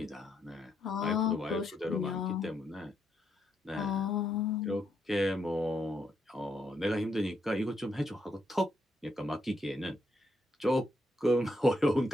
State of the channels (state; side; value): normal; both; correlation 0.78